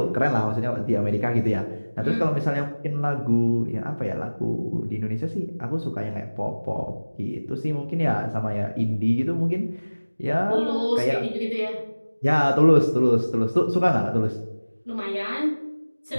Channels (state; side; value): inverted; both; correlation -1.00